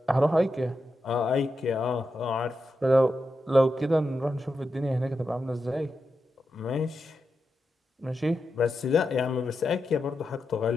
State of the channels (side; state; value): both; normal; correlation 0.87